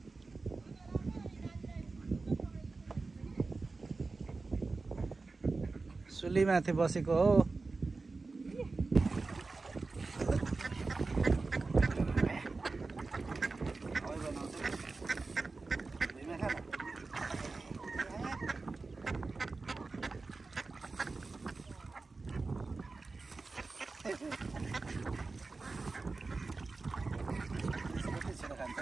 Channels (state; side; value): quieter; left; 3.8 dB